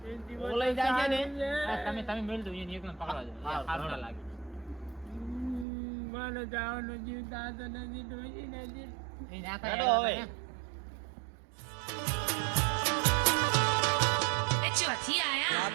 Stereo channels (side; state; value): left; drops out; at 5.7 s